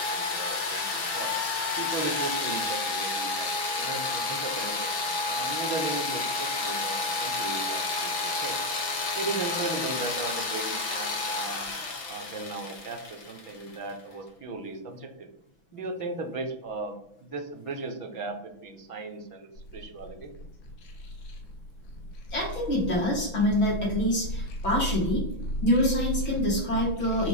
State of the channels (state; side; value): late; right; 6.1 ms